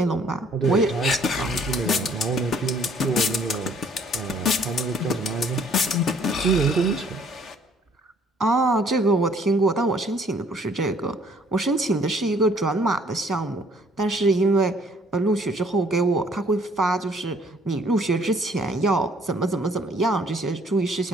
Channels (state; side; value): normal; both; correlation 0.60